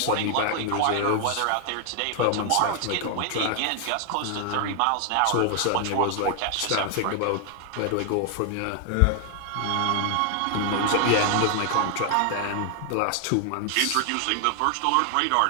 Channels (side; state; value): both; different; correlation 0.00